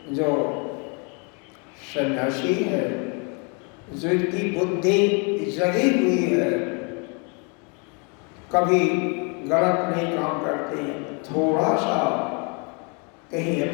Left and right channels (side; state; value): right; quieter; 34.7 dB